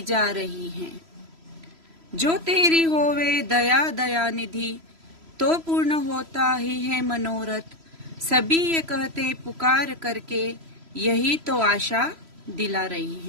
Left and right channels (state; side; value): late; left; 3.0 ms